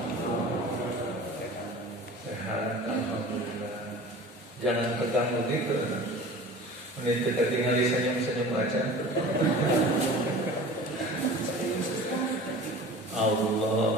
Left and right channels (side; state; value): both; normal; correlation 0.40